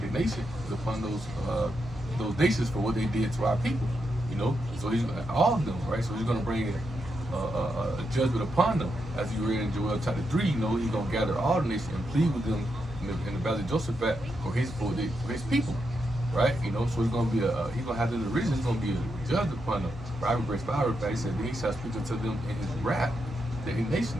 is upon those nations for what they did to our people. So he's all of them, right? So he's going to bring a judgment upon them. As you read in Joel chapter 3, he's going to gather all the nations and plead with them in the valley of Jehoshaphat for his people, right? So he's going to be he's going to have them in derision. He's going to be a judge upon them. Right? Verse 5, he said, then he shall speak unto them in his wrath. The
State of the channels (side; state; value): both; normal; correlation 0.84